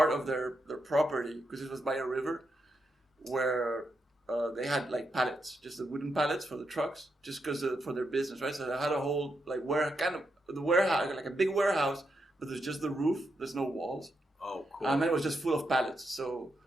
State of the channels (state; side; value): normal; both; correlation 0.83